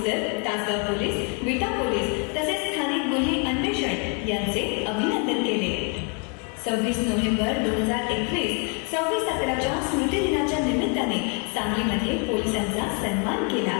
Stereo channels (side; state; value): right; quieter; 37.6 dB